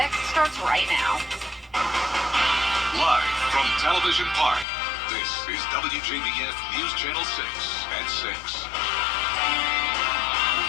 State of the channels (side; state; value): right; drops out; at 4.7 s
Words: starts right now. Live from Television Park, this is WJBF News Channel 6 at 6.